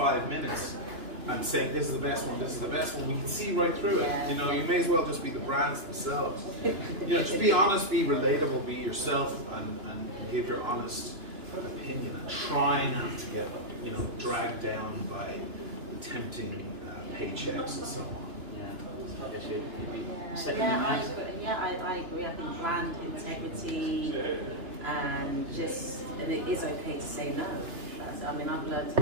minutes and saying this is the best one, we can see right through it. You know, you may as well just be the brands themselves. You know, just be honest, be relatable, be yourself, and give your honest opinion, and try not to get, you know, dragged down by the tempting paychecks and so on. Yeah, I guess you'd be I agree. I think brand integrity and it is okay to say no. I mean, I've learned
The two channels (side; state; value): left; late; 2.9 ms